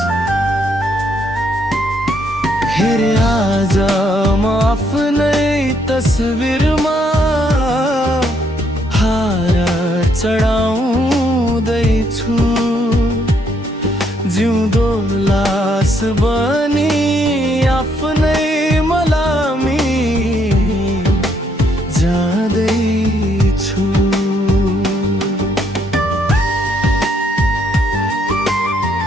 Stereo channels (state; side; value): normal; both; correlation 0.71